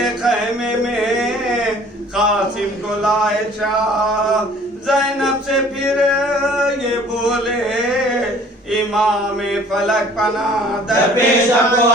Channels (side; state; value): both; normal; correlation 0.53